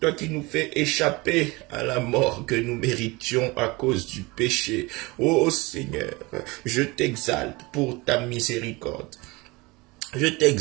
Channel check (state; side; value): quieter; left; 24.0 dB